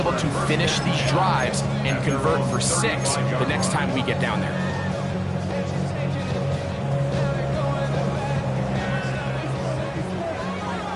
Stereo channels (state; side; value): identical; both; correlation 1.00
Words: to finish these drives and convert for 6 the next time we get down there?